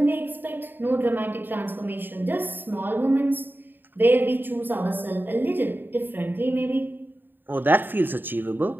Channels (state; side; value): late; left; 0.094 ms